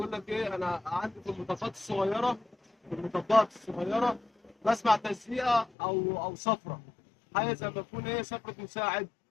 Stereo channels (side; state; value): right; drops out; at 5.7 s